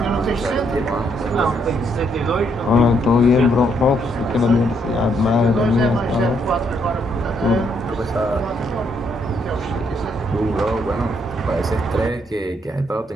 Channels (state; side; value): normal; both; correlation 0.73